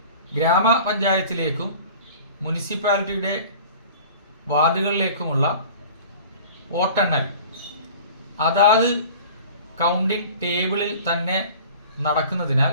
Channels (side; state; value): both; inverted; correlation -0.42